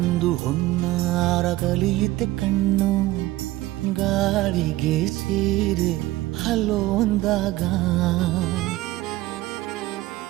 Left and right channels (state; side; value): quieter; left; 17.1 dB